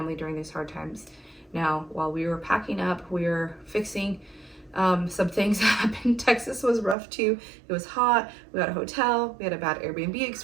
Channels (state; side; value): drops out; left; at 7.0 s